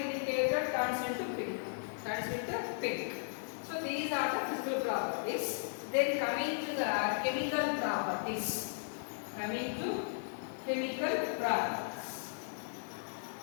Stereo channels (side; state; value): right; silent; digital silence